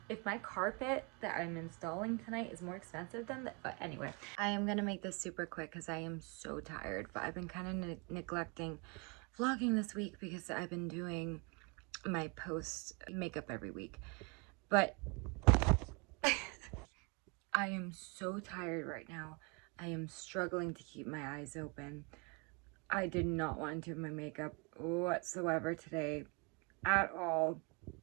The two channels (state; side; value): quieter; left; 31.4 dB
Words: my carpet that I'm installing tonight is more expensive than that, but anyway. I am gonna make this super quick because I am so tired, but I've been kind of neglecting vlogging this week because I've been doing my post makeup every week. But I am so tired right now. I am struggling to keep my eyes open. I did not want to do my makeup whatsoever today at all,